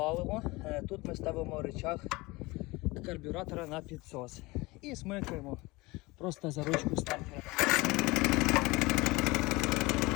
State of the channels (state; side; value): quieter; right; 22.5 dB